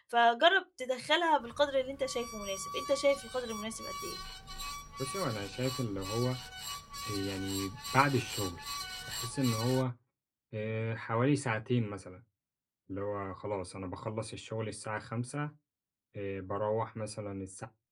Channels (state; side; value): identical; both; correlation 1.00